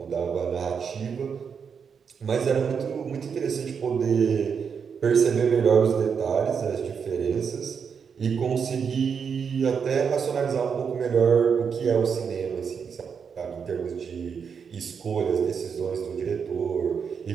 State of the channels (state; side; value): quieter; left; 6.5 dB